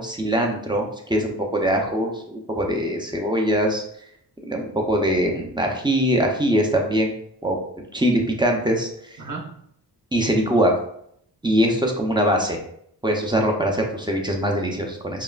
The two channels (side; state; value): both; normal; correlation 0.45